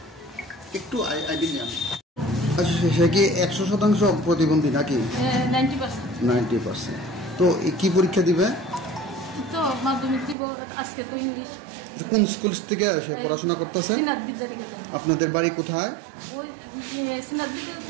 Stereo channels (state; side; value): drops out; left; at 10.4 s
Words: একটু আইডিয়া আচ্ছা সে কি 100% প্রতিবন্ধী নাকি 90%? তো কি পরীক্ষা দিবে? তো মাধ্যমিক দিব আজকে তো ইংলিশ। কোন স্কুল থেকে সে পড়াশোনা করতেছে? সিনাত বিদ্যানিকেতন। আপনাদের বাড়ি কোথায়? ওই সিনাত